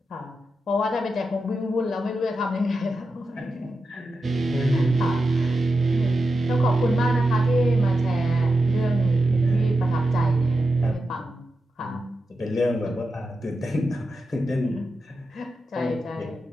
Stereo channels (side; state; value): both; normal; correlation 0.89